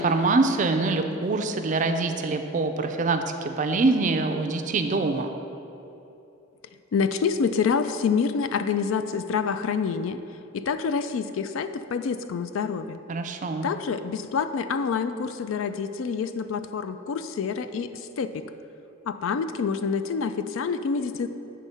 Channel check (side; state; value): both; normal; correlation 0.27